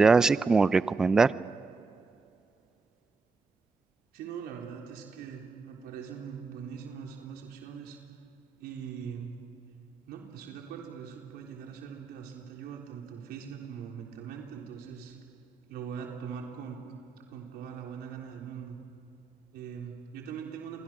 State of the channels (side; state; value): left; quieter; 4.4 dB